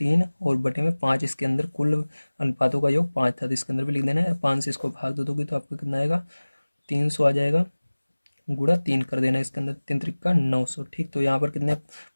और बटे में 5, इसके अंदर कुल अनुपातों का योग 5 था, तो इसके अंदर भी लिख देना है। 5 से इसको भाग दे दोगे तो आपको कितना आएगा, 300 आ जाएगा, गुणा 3 कर देना इसके अंदर, 3 त्रिका 900। ठीक, तो यहाँ पर कितने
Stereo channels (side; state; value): both; inverted; correlation -1.00